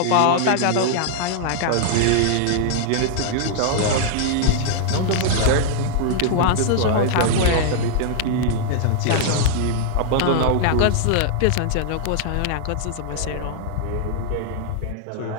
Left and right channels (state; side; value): different; both; correlation -0.01